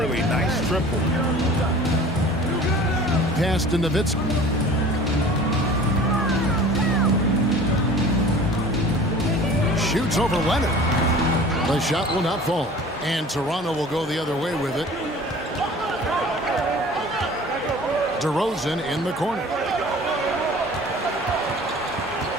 Nice triple. Pass to Nowitzki. Shoots over Leonard. The shot will not fall. And Toronto will go the other way with it. DeRozan in the corner.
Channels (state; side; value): normal; both; correlation 0.44